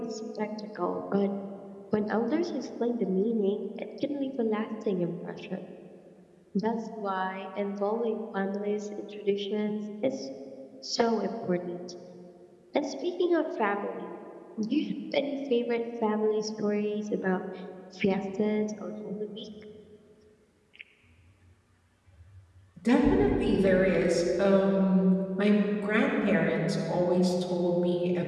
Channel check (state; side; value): identical; both; correlation 1.00